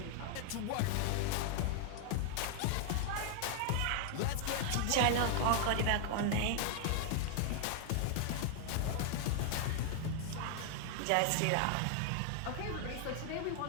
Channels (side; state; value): both; different; correlation 0.00